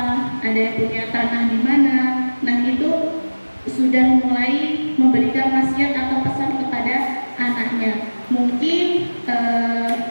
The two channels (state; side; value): inverted; both; correlation -1.00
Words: ada yang punya tanah di mana. Nah, itu sudah mulai memberikan wasiat atau pesan kepada anaknya. Mungkin